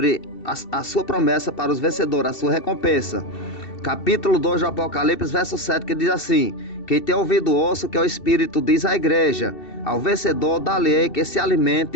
a sua promessa para os vencedores, a sua recompensa. Capítulo 2 do Apocalipse, verso 7, que diz assim: quem tem ouvido ouça o que o Espírito diz à igreja. Ao vencedor dá-lhe que se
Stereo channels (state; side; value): late; right; 2.7 ms